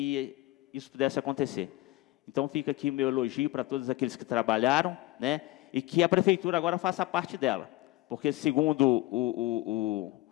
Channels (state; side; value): quieter; right; 18.0 dB